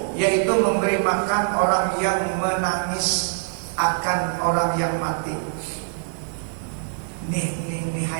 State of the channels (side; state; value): left; silent; digital silence